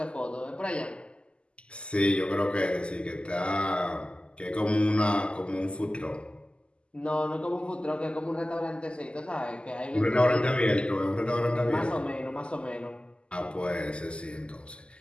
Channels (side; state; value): right; late; 0.052 ms